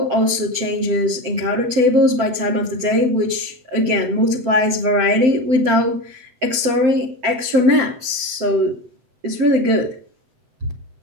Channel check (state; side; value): late; left; 7.7 ms